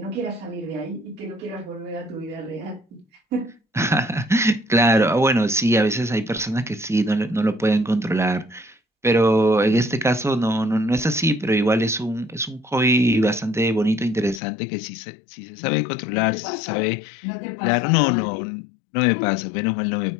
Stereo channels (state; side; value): drops out; right; at 14.4 s